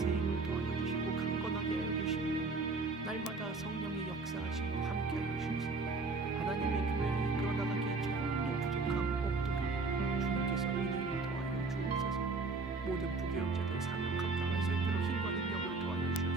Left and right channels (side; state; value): left; quieter; 3.9 dB